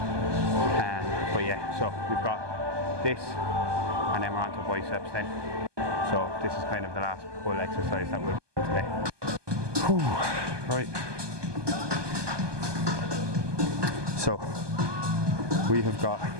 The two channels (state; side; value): late; left; 1.2 ms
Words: But yeah, so we've got this, and then we're on to biceps then. So this is kind of the last pull exercise that we'll do today. Whew. Right. So we have got